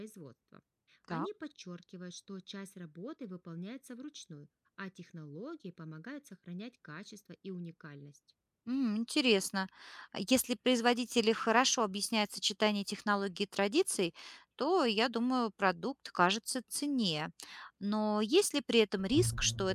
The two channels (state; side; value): identical; both; correlation 1.00